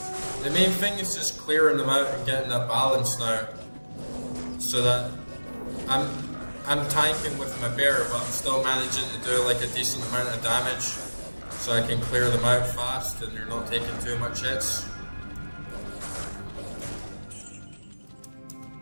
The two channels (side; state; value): both; inverted; correlation -1.00